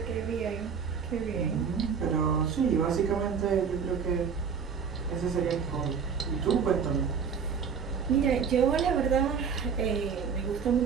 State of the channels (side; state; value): left; quieter; 6.5 dB